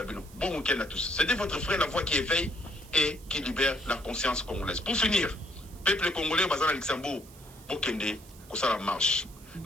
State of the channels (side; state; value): right; noise; hiss, 22 dB below the sound